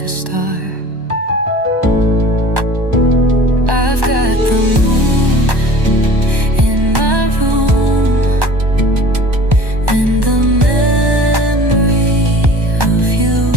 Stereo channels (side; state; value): left; late; 1.1 ms